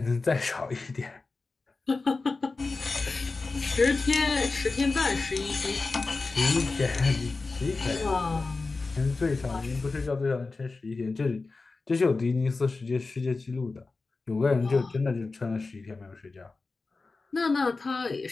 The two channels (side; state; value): right; quieter; 3.8 dB